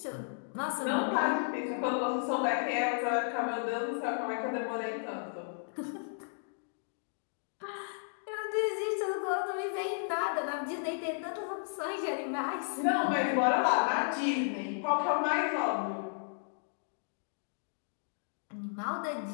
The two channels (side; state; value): right; silent; digital silence